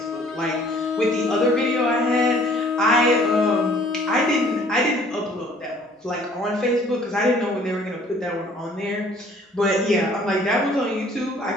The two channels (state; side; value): normal; both; correlation 0.56